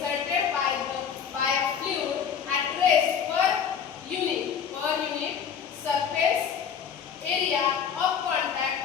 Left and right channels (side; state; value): right; quieter; 7.5 dB